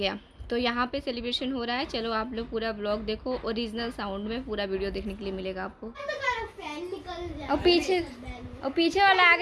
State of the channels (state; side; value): identical; both; correlation 1.00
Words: तो यहाँ पे सेलिब्रेशन हो रहा है। चलो आप लोग पूरा ब्लॉग देखो, ओरिजिनल साउंड में पूरा वीडियो देखने के लिए मिलेगा आपको। और पीछे वाला